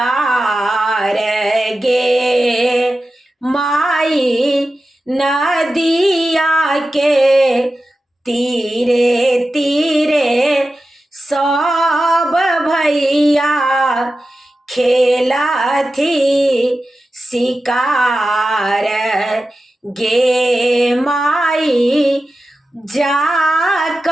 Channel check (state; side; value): normal; both; correlation 0.93